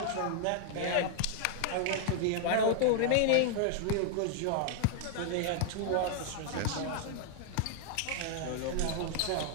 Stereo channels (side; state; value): both; different; correlation -0.01